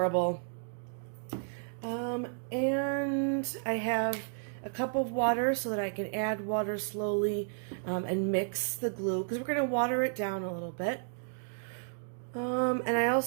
And I have a cup of water so that I can add water slowly and mix the glue because we're going to water it down a little bit. And I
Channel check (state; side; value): silent; left; digital silence